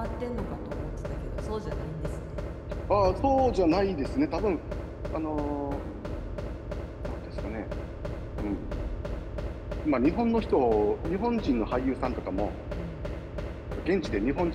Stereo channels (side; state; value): both; identical; correlation 1.00